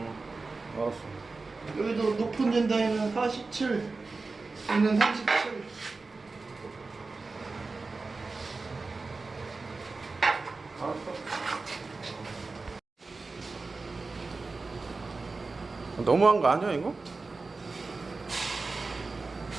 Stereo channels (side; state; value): left; quieter; 3.8 dB